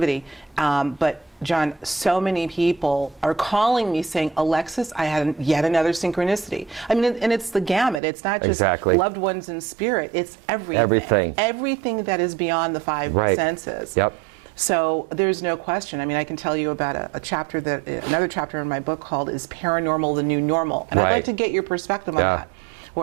But John, so many people are calling me saying, Alexis, I had yet another synchronicity. I mean, and it's the gamut. It's not just Exactly. loved ones in spirit. It's everything. Everything that is beyond the five Right. senses. Yep. So there's no question. I mean, I can tell you about another chapter in my book called Is Paranormal the New Normal? And I'd like Right. to get your perspective on that,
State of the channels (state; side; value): drops out; left; at 8.0 s